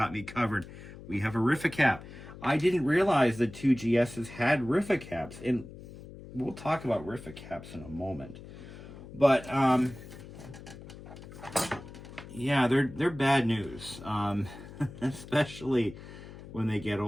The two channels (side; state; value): left; noise; hum, 15 dB below the sound